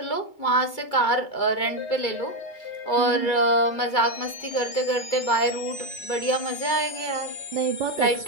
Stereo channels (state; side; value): late; right; 2.3 ms